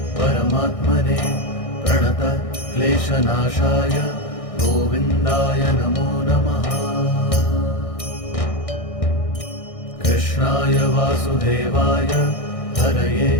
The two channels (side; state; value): right; late; 1.6 ms